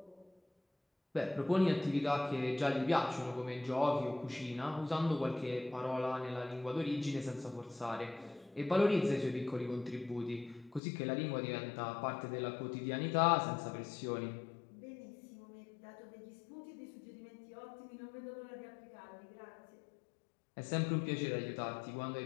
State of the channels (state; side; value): drops out; right; at 10.8 s